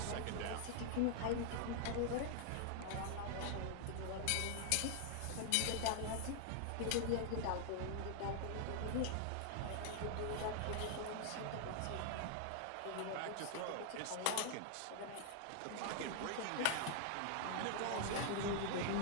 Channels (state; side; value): different; both; correlation 0.00